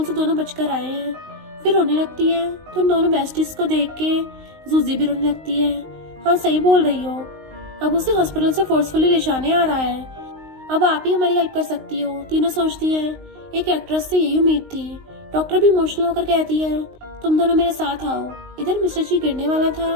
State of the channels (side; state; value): left; late; 19 ms